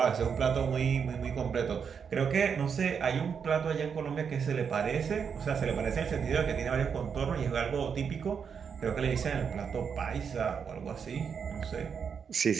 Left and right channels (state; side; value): quieter; left; 6.7 dB